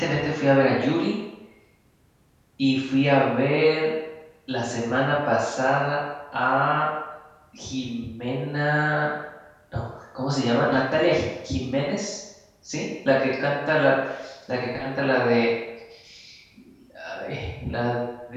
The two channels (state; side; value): identical; both; correlation 1.00